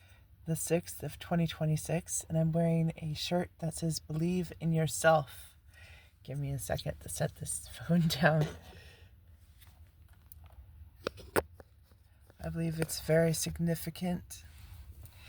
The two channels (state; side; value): identical; both; correlation 1.00